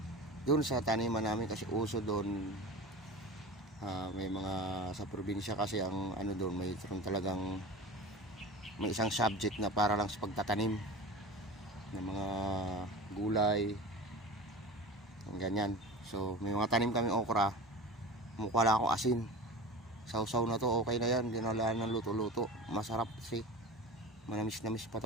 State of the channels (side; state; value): both; normal; correlation 0.31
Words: doon sa taniman namin kasi uso doon. May mga sa probinsya kasi ang ano doon, may talagang may isang subject na para lang sa pagtatanim ng mga gulay, ganyan. So may mga tanim kami okra, mukha lang ako asin. Sausaw na to, okay na yan, dinalaan ng luto-luto, masarap kasi manamis-namis pa